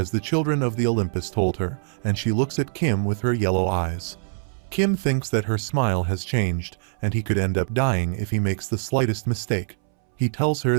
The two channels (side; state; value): left; silent; 63 dB below the other